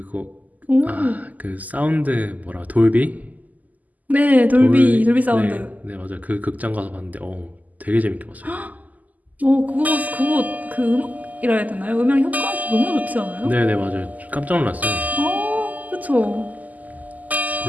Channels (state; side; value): late; left; 0.079 ms